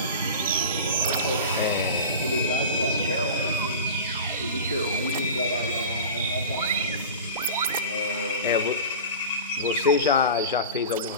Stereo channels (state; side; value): inverted; both; correlation -0.32